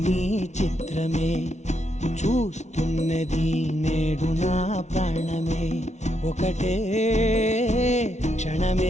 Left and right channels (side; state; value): right; late; 0.33 ms